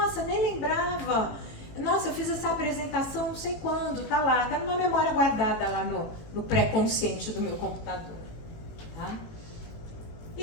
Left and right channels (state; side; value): late; right; 18 ms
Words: nem lembrava, nossa, eu fiz essa apresentação não sei quando, tá lá, tá numa memória guardada lá no pré-consciente do meu computador. Tá?